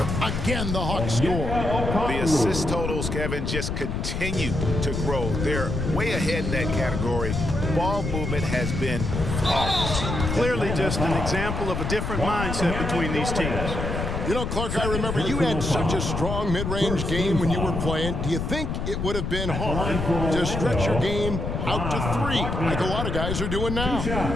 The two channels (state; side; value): noise; left; rumble, 3 dB below the sound